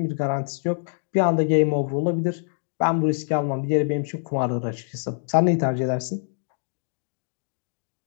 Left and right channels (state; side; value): silent; right; digital silence